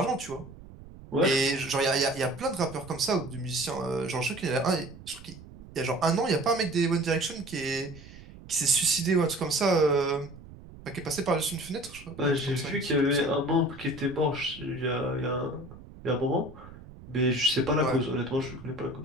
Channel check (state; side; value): noise; right; rumble, 18 dB below the sound